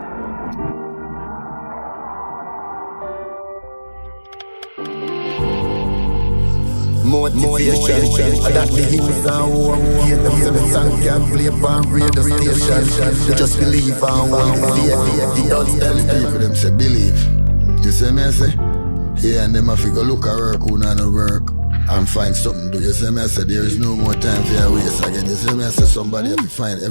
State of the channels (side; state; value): both; inverted; correlation -1.00